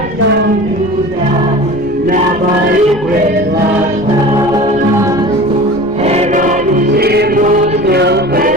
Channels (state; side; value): noise; left; rumble, 18 dB below the sound